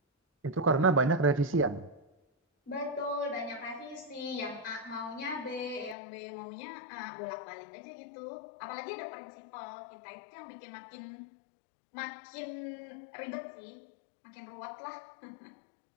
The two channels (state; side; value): drops out; right; at 6.0 s